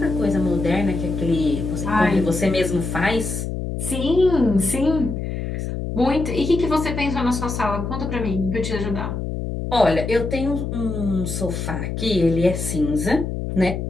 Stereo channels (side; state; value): left; noise; hum, 4 dB below the sound